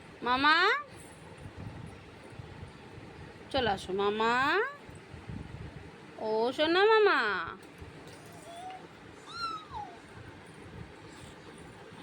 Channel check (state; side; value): identical; both; correlation 1.00